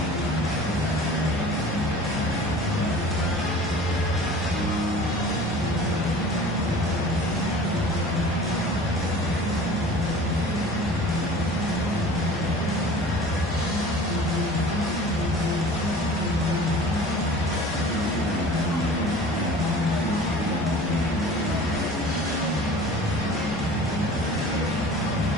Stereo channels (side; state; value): both; normal; correlation 0.43